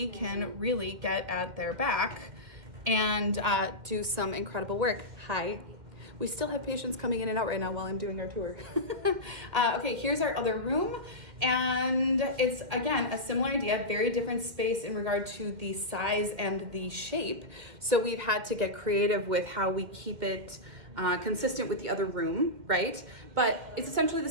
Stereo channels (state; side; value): late; left; 2.1 ms